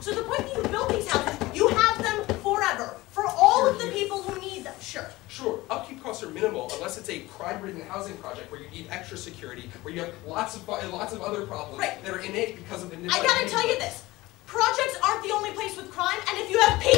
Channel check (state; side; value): quieter; right; 19.4 dB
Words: So the point that you build these houses, you have them forever for all of the people who need them. Sure. Sure. Upkeep costs are minimal unless it's a crime-ridden housing project where you need extra security, where you have lots of other problems that are innate because of the. I gotta tell you this. Projects aren't the only place with crime, and if you have